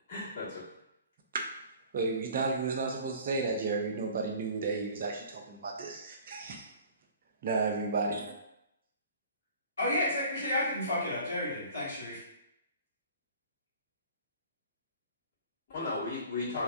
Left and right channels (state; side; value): inverted; both; correlation -0.47